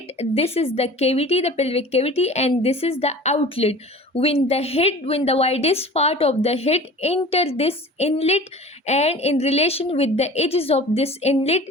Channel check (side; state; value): both; normal; correlation 0.41